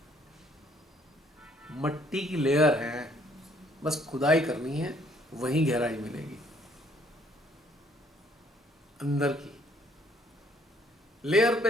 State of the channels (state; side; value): normal; both; correlation 0.64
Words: मट्टी की लेयर है, बस खुदाई करनी है, वहीं गहराई मिलेगी। अंदर की लेयर पे